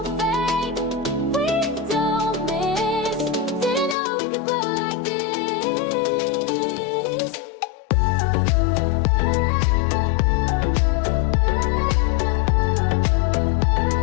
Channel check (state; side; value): drops out; right; at 4.0 s